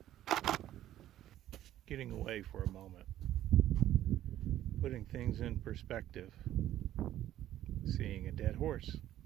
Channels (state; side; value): quieter; left; 12.8 dB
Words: getting away for a moment, putting things in perspective, seeing a dead horse,